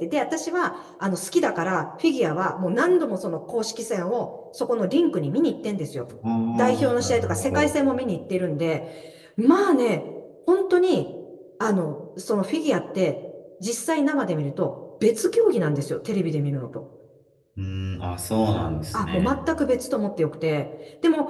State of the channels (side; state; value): both; identical; correlation 1.00